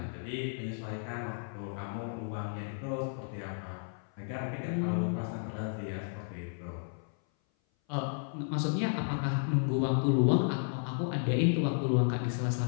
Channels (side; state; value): right; silent; 56 dB below the other